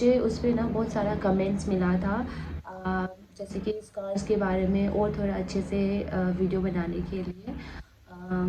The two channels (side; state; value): both; identical; correlation 1.00